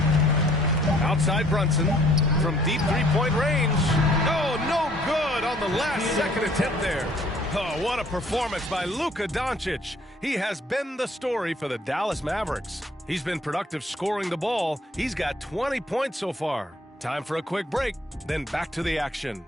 Outside Brunson from deep three-point range. Oh, no good on the last second attempt there. Oh, what a performance by Luka Doncic. He has been the story for the Dallas Mavericks. He's been productive scoring the ball. He's got 20 points so far. Time for a quick break, then back to the action.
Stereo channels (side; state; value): both; normal; correlation 0.59